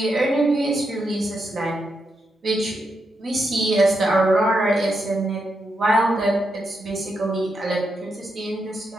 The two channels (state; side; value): normal; both; correlation 0.83